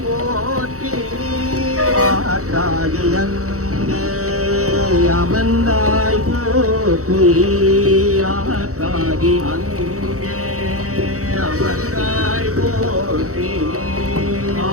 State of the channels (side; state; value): left; late; 0.65 ms